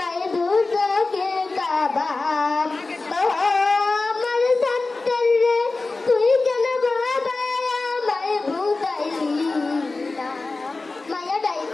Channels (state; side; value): quieter; right; 3.5 dB